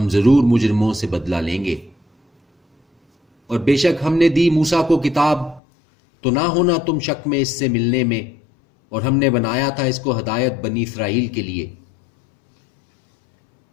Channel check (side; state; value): right; drops out; at 5.6 s